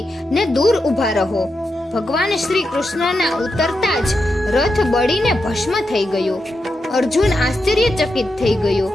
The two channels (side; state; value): both; normal; correlation 0.86